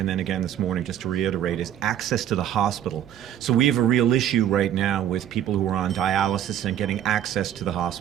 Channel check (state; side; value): quieter; left; 10.7 dB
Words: then again this morning, just to reiterate, is access to the hospital. So we have a real issue right now with people who are on dialysis and getting access to the